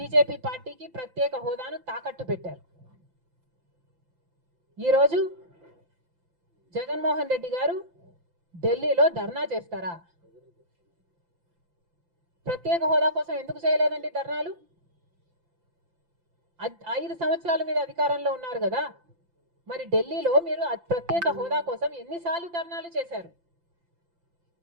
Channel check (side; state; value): left; late; 5.8 ms